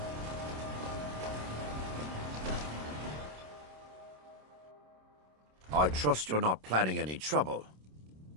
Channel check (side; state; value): left; late; 27 ms